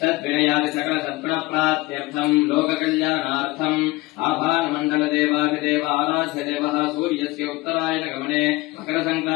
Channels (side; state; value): right; quieter; 21.1 dB